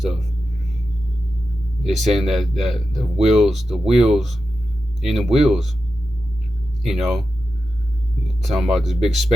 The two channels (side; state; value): both; normal; correlation 0.90